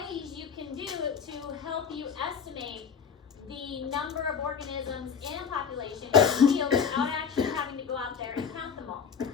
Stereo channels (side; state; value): right; quieter; 6.7 dB